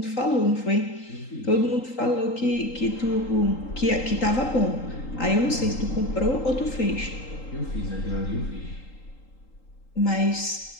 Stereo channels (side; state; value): right; late; 3.8 ms